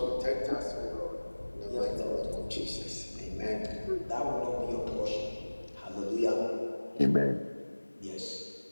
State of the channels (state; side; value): inverted; both; correlation -1.00